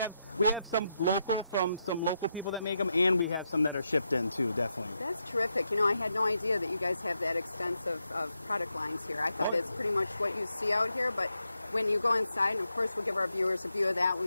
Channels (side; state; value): both; inverted; correlation -0.84